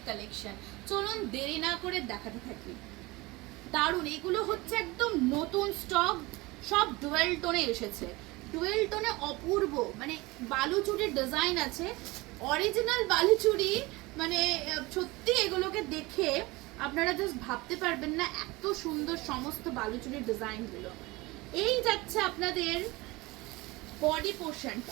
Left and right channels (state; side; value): quieter; left; 22.3 dB